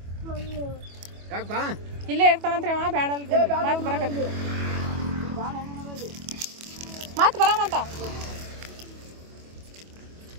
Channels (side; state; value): left; late; 25 ms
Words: ಇಲ್ಲೇ ಇರ್ತಾನಂತ್ರಿ ಅವ. ಬೇಡ ಮತ್ತೆ ಬರಕತ್ತಿ ಮತ್ತೆ ಬರಾಮಂತ.